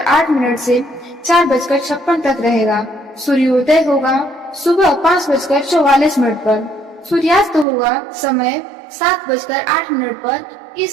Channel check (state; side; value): drops out; left; at 7.7 s